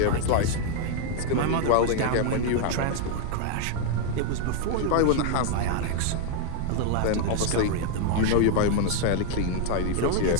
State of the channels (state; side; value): different; both; correlation 0.00